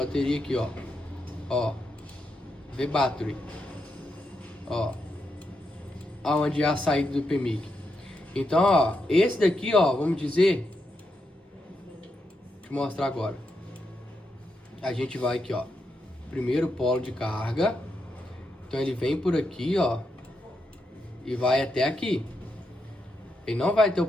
aqui, ó. Ó. V-Battery. Ó. Aonde é a saída do PMIC. Então, ó, esse daqui, ó, vamos dizer. Deixa eu mostrar agora. A gente vai aqui, ó. Primeiro polo de carga. Então ele vem por aqui, ó. E vai até aqui. Ele não vai ter o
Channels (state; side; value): normal; both; correlation 0.83